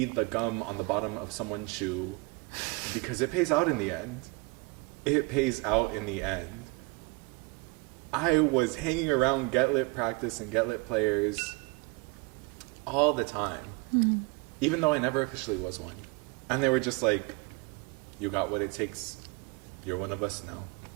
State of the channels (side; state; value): left; quieter; 27.6 dB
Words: the gum on the bottom of someone's shoe, because it pays out in the end. It pays out in the end. I was hanging around Get Lit practice and Get Lit players all the time, even though I never officially was one. And they were just like, you got what it takes. You're one of us now.